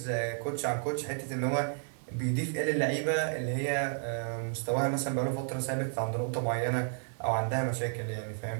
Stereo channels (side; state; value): left; silent; 57 dB below the other